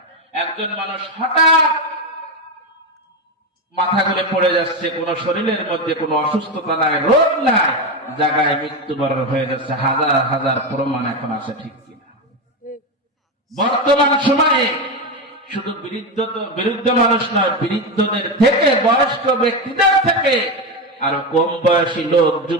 একজন মানুষ হঠাৎ মাথা ঘুরে পড়ে যাচ্ছে, কোন শরীরের মধ্যে কোনো অসুস্থতা নাই, রোগ নাই, জায়গায় মৃত্যুবরণ হয়ে যাচ্ছে, হাজার হাজার প্রমাণ এখন আছে, ঠিক কিনা? বর্তমান সময়ে শুধু বিরুদ্ধ মানুষ নয়, বিরুদ্ধদের থেকে, বয়স্ক ব্যক্তিদের থেকে আরো কম বয়সী লোক,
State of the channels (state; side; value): normal; both; correlation 0.14